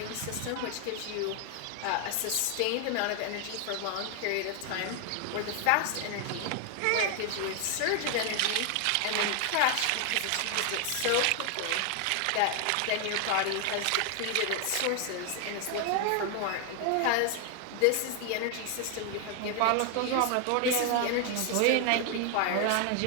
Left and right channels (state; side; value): different; both; correlation 0.00